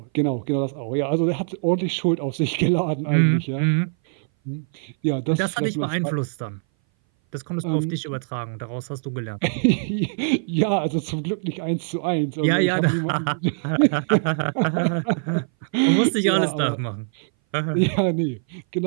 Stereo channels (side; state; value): left; silent; 59 dB below the other